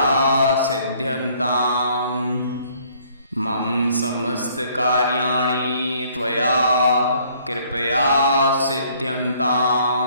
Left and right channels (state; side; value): inverted; both; correlation -0.61